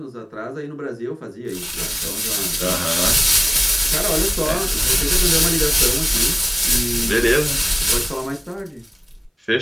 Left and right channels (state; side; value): identical; both; correlation 1.00